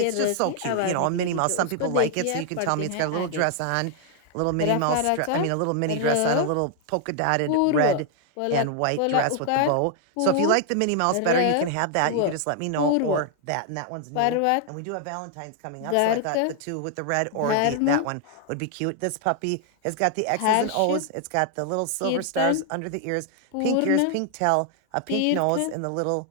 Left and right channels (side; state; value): both; different; correlation 0.00